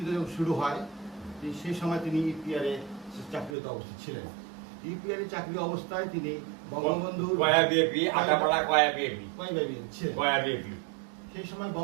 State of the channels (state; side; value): drops out; left; at 3.6 s